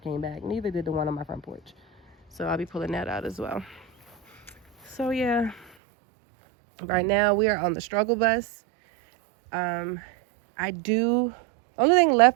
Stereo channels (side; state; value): left; drops out; at 5.7 s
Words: back. Neither did the one on my front porch. So I'll be pulling that out as well. So yeah, right now we are on the struggle bus. Only thing